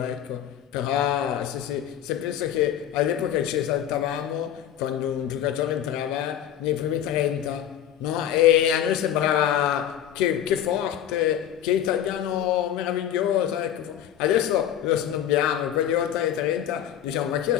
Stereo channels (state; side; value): quieter; right; 10.5 dB